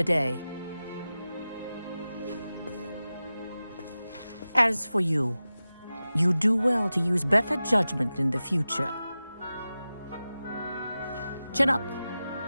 day. As for you, you do well to use better judgment in the future. Chin up.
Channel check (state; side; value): inverted; both; correlation -0.94